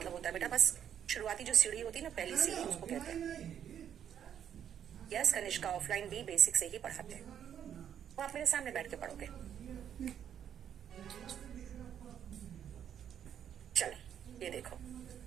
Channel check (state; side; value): quieter; left; 9.2 dB